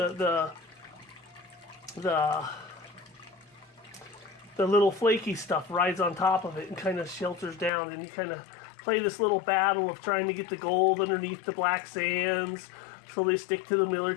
little flaky stuff rides on top of it and kind of shelters down, and you kind of play this little battle of trying to get the gold underneath the black sands so they stick to the miller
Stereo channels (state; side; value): drops out; right; at 7.7 s